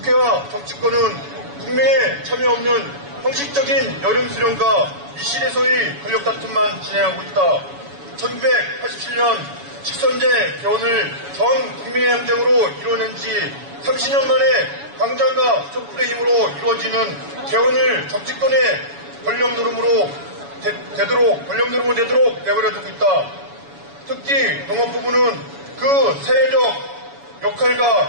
정치권은 국민의 참여 없는 형식적인 여름 수련과 미실에서의 권력 다툼만 진행하고 있다. 1987년 직선제 개헌을 전 국민의 행정으로 이뤄낸 지 30년 만에 광장과 촛불의 힘으로 이루어지는 개헌을 정치권의 권력 노름으로 되도록 내버려두고 있다. 특히 농업부문은 그 사회적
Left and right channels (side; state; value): left; late; 7.1 ms